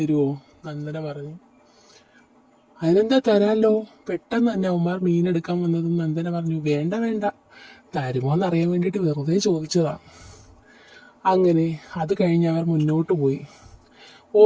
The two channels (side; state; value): both; identical; correlation 1.00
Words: നന്ദന പറഞ്ഞു. അതിനെന്താ, തരാമല്ലോ. പെട്ടെന്ന് തന്നെ അവന്മാർ മീനെടുക്കാൻ വന്നതും നന്ദന പറഞ്ഞു, വേണ്ട വേണ്ട, തരുമോ എന്നറിയാൻ വേണ്ടിയിട്ട് വെറുതെ ചോദിച്ചതാ. അങ്ങനെ അത് കഴിഞ്ഞ് അവർ മുന്നോട്ട് പോയി.